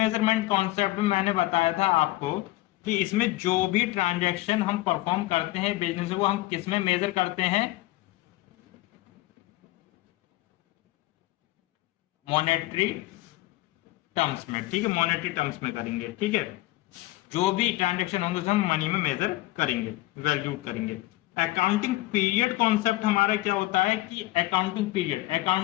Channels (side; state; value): right; quieter; 18.4 dB